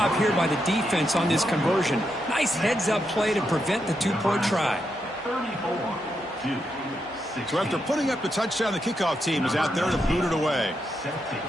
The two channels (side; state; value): both; normal; correlation 0.83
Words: here by the defense on this conversion. Nice heads-up play to prevent the 2-point try. So after putting up the touchdown, the kickoff team is out there to boot it away.